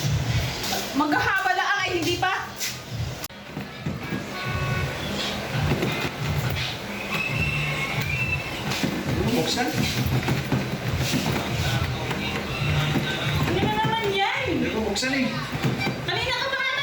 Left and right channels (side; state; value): both; identical; correlation 1.00